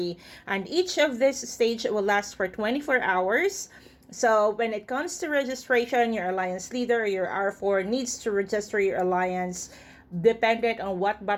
And each of this stage will last for 24 hours. So when it comes to registration, your alliance leader, your R4, needs to register your alliance dependent on what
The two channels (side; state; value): both; identical; correlation 1.00